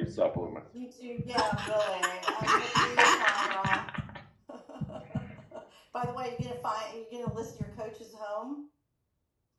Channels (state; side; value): identical; both; correlation 1.00